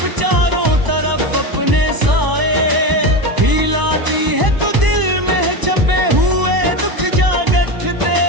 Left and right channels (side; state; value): left; late; 1.0 ms